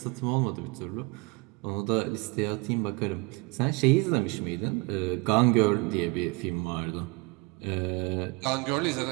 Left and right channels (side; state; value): left; quieter; 27.1 dB